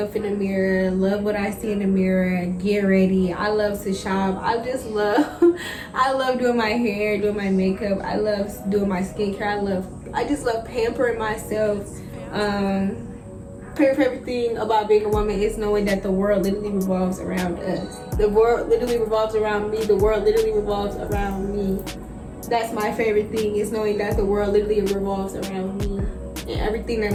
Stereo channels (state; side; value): identical; both; correlation 1.00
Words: in the mirror, love what I see in the mirror, get ready. I love to shop. I just love I love doing my hair, doing my makeup. I love doing my skincare. I just love pampering myself. Favorite thing about being a woman is knowing that the world literally revolves around us. The world literally revolves around me. The world literally revolves around me. That's my favorite thing, is knowing that the world literally revolves around me. And everything that